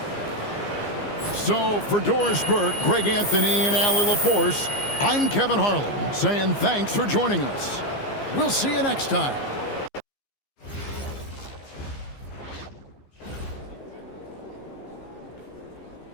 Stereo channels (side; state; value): right; late; 15 ms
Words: So for Doris Burke, Greg Anthony, and Allie LaForce, I'm Kevin Harlan saying thanks for joining us. We'll see you next time.